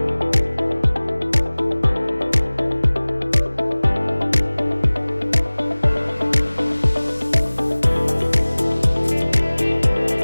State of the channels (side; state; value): both; inverted; correlation -1.00